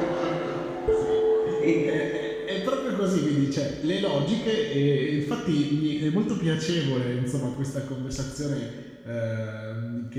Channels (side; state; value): both; identical; correlation 1.00